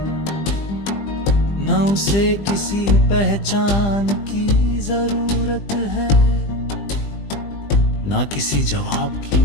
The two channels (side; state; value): right; late; 20 ms